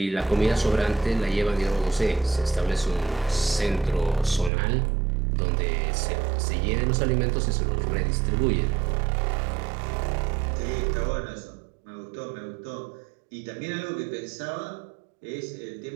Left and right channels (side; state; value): left; drops out; at 4.5 s